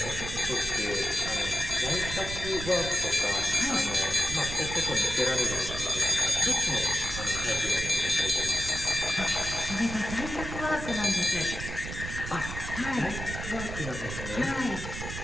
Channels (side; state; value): right; noise; rumble, 7 dB below the sound